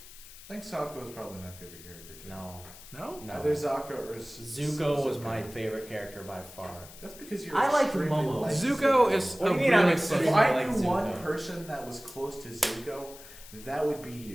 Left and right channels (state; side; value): noise; left; hiss, 18 dB below the sound